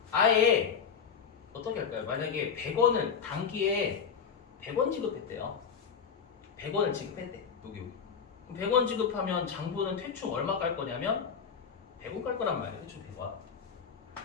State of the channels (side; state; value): right; quieter; 6.7 dB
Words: 아예 어떻게 할까요? 만약에 100원을 단기에 100원 지급했대요. 100원을 지급했대. 여기. 100원 지급하면 장부는 퇴충 얼마 깔 거냐면 100원 깔 거란 말이에요. 퇴충 100원.